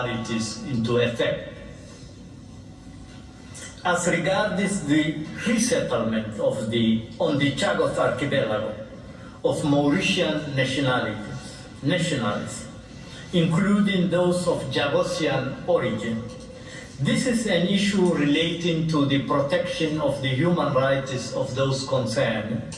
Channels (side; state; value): both; identical; correlation 1.00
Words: into effect. As regards the resettlement on the Chagos Archipelago of Mauritian nationalities, including those of Jagosian origin, this is an issue relating to the protection of the human rights of those concerned,